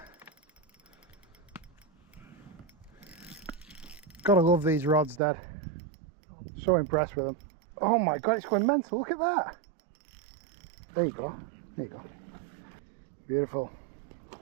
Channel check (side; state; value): left; drops out; at 5.2 s